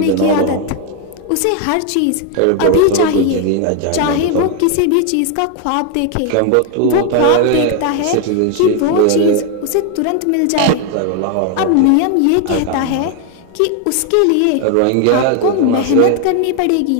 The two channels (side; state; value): both; different; correlation 0.01